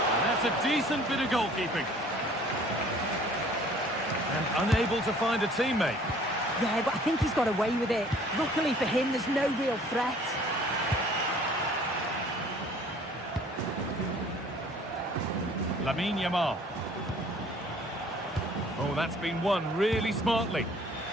And that's a decent bit of goalkeeping. And unable to find a teammate. Yeah, but I think he's got away with it. Luckily for him, there's no real threat. Lamine Yamal. Oh, that's been won really smartly.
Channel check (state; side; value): normal; both; correlation 0.54